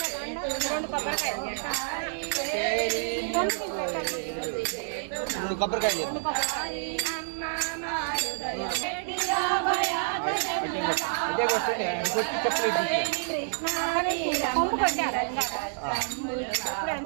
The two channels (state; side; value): silent; left; digital silence